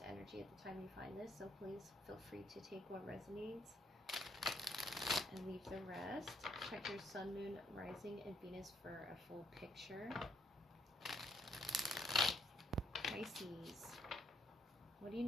energy at the time you find this. So please feel free to take what resonates and leave the rest. Check your sun, moon, rising, and Venus for a full picture. Pisces, what do you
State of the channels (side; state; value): both; normal; correlation 0.69